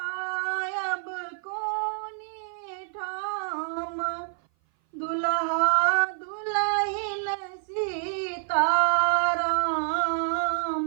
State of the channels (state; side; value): silent; left; 57 dB below the other